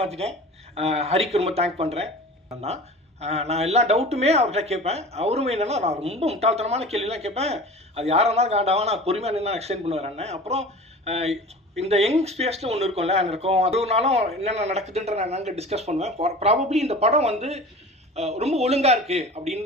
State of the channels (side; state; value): both; normal; correlation 0.38